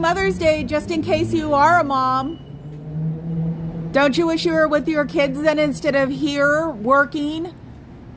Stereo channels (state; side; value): identical; both; correlation 1.00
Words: Day, just in case you are a mom. Don't you wish you were with your kids then instead of here working